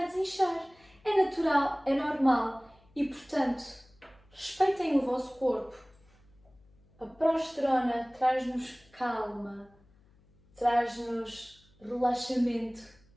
desinchar. É natural, é normal e, portanto, respeitem o vosso corpo. A progesterona traz-nos calma, traz-nos relaxamento.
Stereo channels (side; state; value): left; noise; hum, 30 dB below the sound